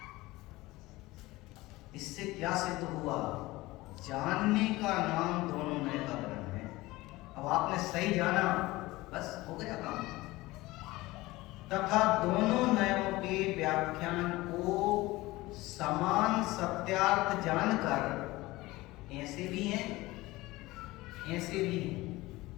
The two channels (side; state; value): right; quieter; 19.7 dB